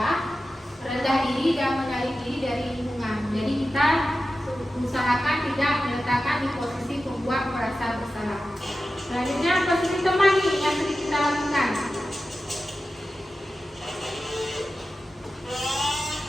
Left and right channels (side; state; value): both; normal; correlation 0.93